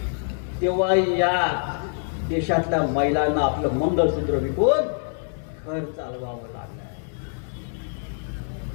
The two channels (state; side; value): silent; right; digital silence